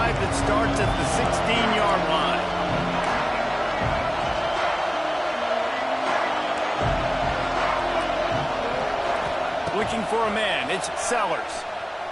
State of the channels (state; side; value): identical; both; correlation 1.00